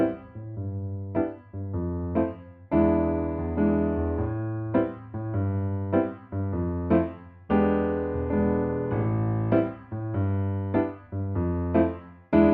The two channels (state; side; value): identical; both; correlation 1.00